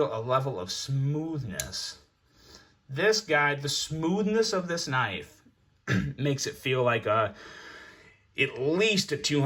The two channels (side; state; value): both; identical; correlation 1.00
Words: a level of smoothness. This guy, the smoothness of this knife makes it feel like at least a